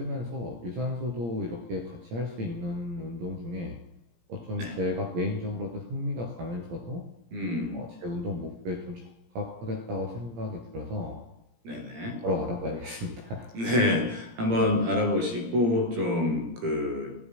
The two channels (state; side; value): late; left; 17 ms